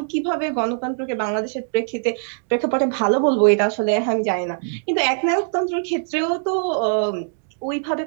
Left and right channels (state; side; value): silent; left; digital silence